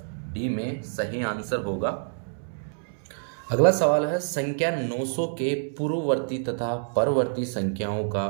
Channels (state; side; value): silent; left; 60 dB below the other